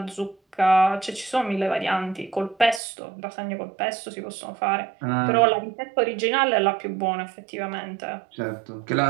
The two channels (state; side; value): drops out; left; at 2.8 s